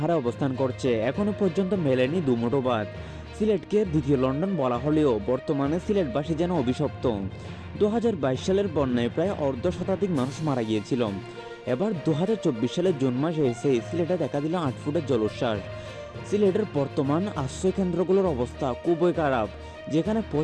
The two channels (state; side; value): identical; both; correlation 1.00